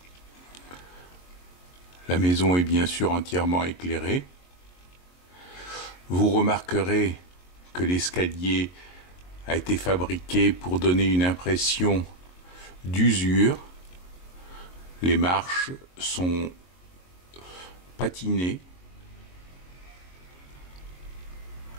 La maison est bien sûr entièrement éclairée. Vous remarquerez que l'escalier a été fabriqué pour donner une impression d'usure. Les marches sont patinées.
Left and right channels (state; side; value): late; right; 22 ms